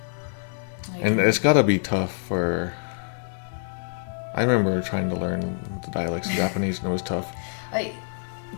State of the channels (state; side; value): silent; right; digital silence